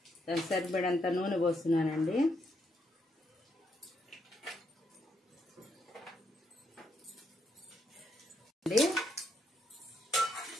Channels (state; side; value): normal; both; correlation 0.77